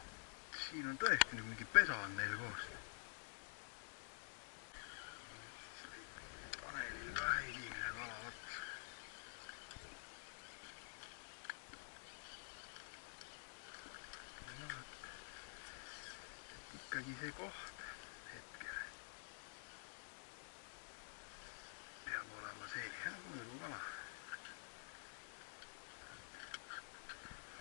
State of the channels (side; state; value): right; silent; digital silence